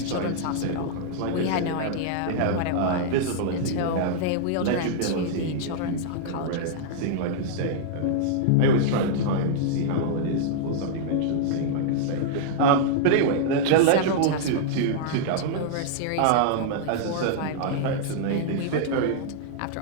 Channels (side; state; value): both; different; correlation -0.01